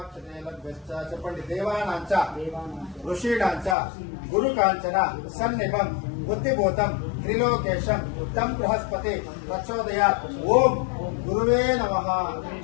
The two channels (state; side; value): drops out; right; at 3.8 s